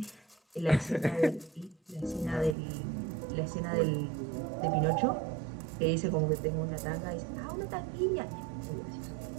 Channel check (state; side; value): drops out; left; at 2.6 s